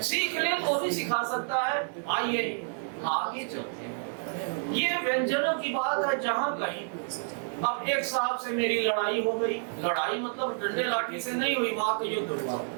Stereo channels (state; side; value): silent; left; 58 dB below the other